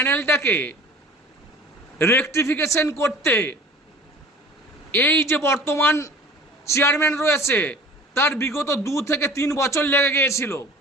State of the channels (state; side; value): normal; both; correlation 0.44